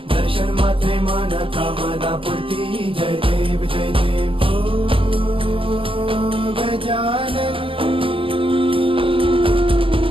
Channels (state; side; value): late; left; 0.25 ms